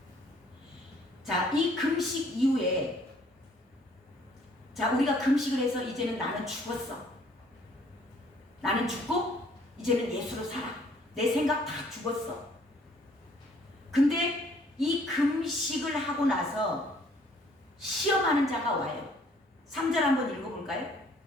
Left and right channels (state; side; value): normal; both; correlation 0.60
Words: 자, 이 금식 이후에 자, 우리가 금식을 해서 이제는 나는 죽었어. 나는 죽고 이제는 예수로 살아. 내 생각 다 죽었어. 근데 이 금식을 하고 나서 시험하는 자가 와요. 3절 한번 읽어볼까요?